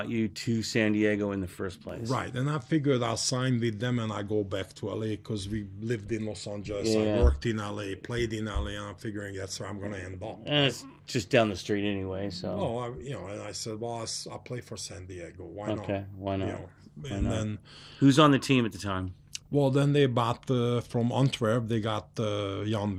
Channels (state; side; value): identical; both; correlation 1.00